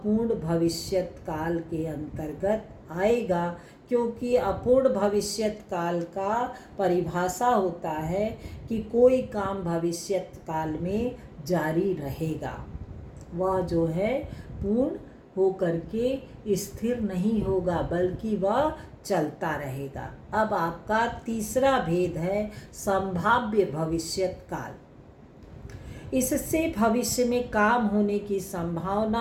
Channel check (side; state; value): both; identical; correlation 1.00